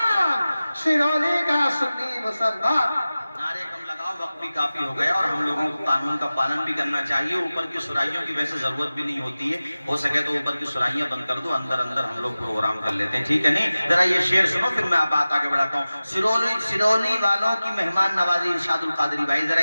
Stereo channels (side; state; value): both; inverted; correlation -0.97